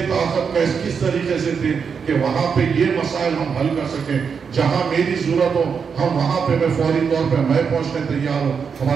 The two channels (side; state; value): left; quieter; 6.2 dB